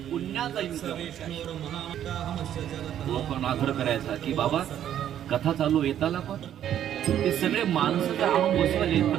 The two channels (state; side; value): quieter; left; 10.6 dB